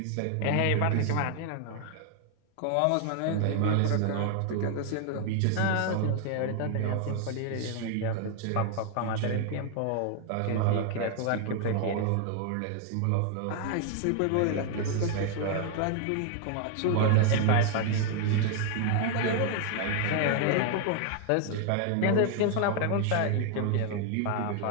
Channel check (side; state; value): both; different; correlation 0.00